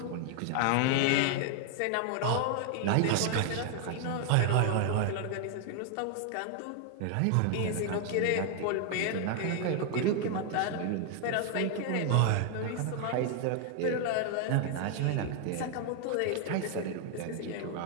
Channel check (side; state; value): both; different; correlation 0.00